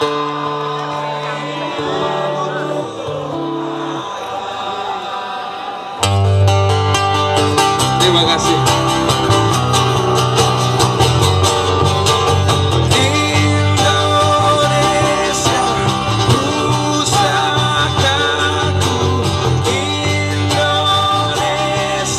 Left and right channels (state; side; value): identical; both; correlation 1.00